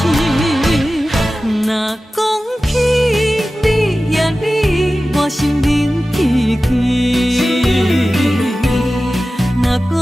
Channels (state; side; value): normal; both; correlation 0.95